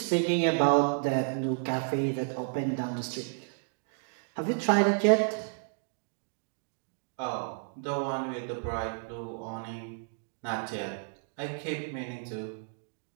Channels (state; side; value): silent; left; 57 dB below the other